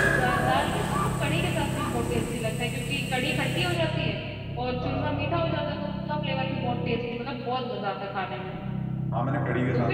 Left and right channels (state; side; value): identical; both; correlation 1.00